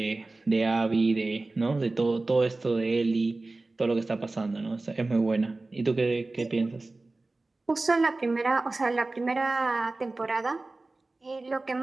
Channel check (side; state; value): left; quieter; 3.2 dB